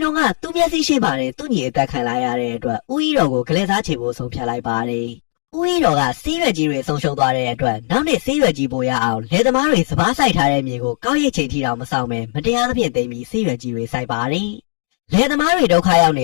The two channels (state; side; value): silent; right; digital silence